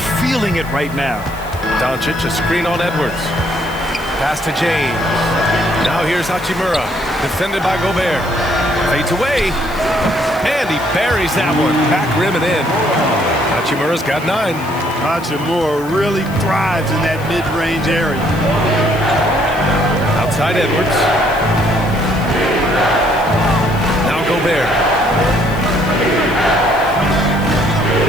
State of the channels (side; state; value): left; noise; hiss, 20 dB below the sound